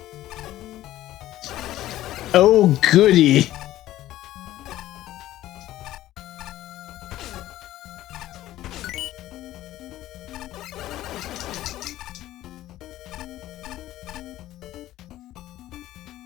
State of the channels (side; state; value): right; quieter; 14.5 dB